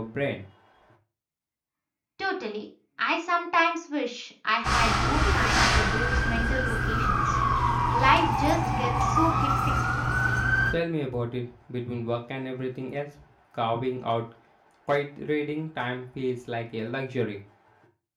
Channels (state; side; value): identical; both; correlation 1.00